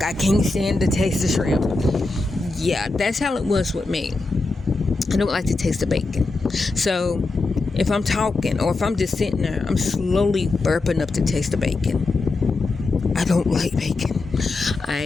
I can't stand the taste of shrimp. Yeah, that's how it was with me. I don't like the taste of bacon. So if I'm talking or if I'm just sitting there, I'm slowly burping up the taste of bacon. I don't like bacon.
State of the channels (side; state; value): right; quieter; 3.4 dB